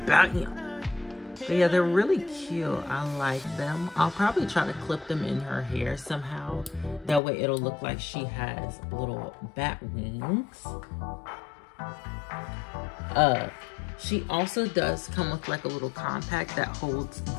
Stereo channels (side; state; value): right; drops out; at 7.2 s